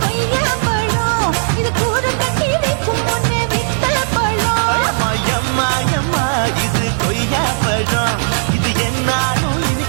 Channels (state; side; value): silent; left; digital silence